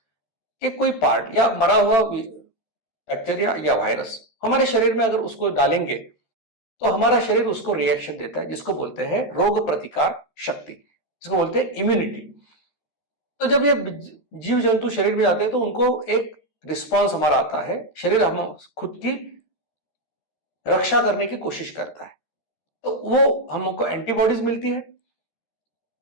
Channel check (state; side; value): late; right; 13 ms